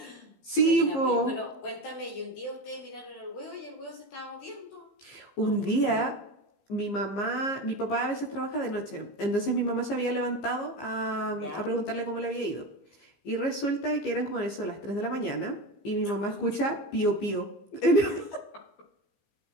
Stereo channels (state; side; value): late; right; 15 ms